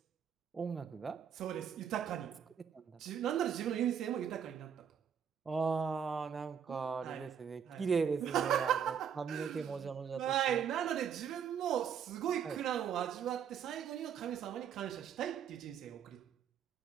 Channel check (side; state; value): left; quieter; 7.9 dB